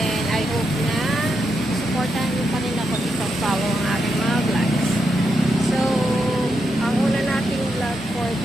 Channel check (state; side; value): normal; both; correlation 0.83